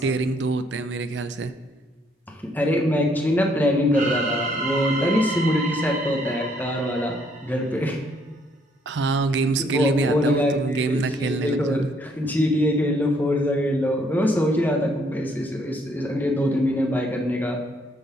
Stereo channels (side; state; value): both; normal; correlation 0.68